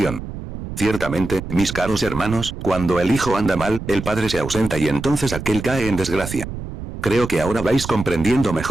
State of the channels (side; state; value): right; noise; rumble, 9 dB below the sound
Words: Ciertamente, mis caros hermanos, cuando el hijo anda mal, el padre se ausenta y entonces aquel cae en desgracia. Creo que ahora vais comprendiendo